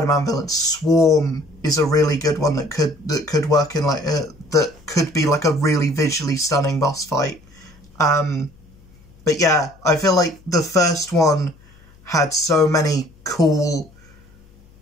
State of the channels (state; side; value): noise; left; hum, 27 dB below the sound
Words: villains. Swarm is a really good one that could work in like that could be like a really visually stunning boss fight. But yeah, I feel like the first one had so many cool